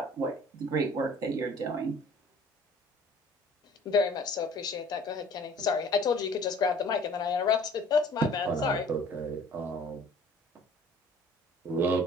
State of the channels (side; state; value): both; normal; correlation 0.51